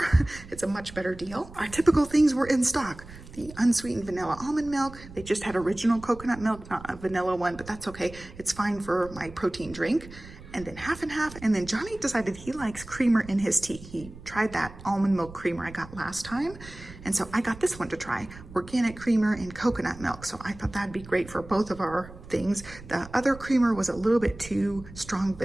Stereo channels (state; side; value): noise; right; rumble, 17 dB below the sound